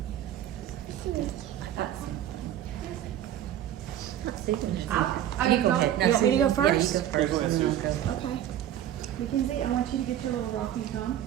You go ahead. You want me to go first? Yeah, you go first. Yeah, go ahead, and then Susan. I'll go. Okay. Mackenzie, I want you to get your little rocky thumb,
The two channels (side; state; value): left; quieter; 11.5 dB